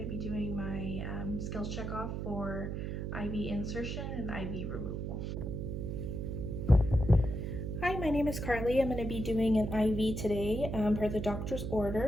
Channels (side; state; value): right; noise; hum, 3 dB below the sound